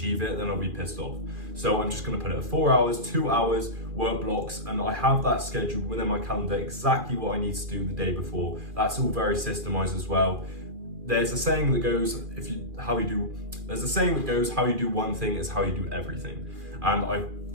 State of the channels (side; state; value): left; late; 2.4 ms